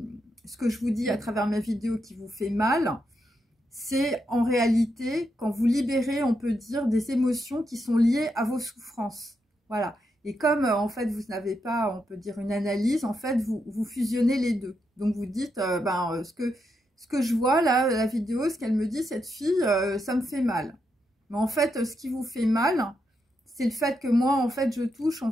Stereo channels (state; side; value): normal; both; correlation 0.82